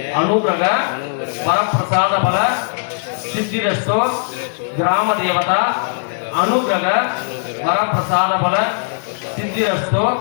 अनुग्रह वरप्रसाद बल सिद्धिरस्तु ग्राम देवता अनुग्रह वरप्रसाद बल सिद्धिरस्तु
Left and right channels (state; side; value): silent; right; digital silence